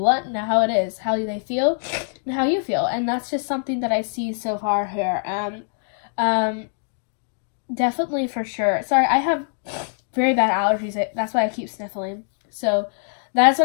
and how it is, how they feel, and how you feel. And that's just something that I see so far here. Definitely, for sure. Sorry, I have very bad allergies. That's why I keep sniffling. So that's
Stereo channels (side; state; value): right; silent; digital silence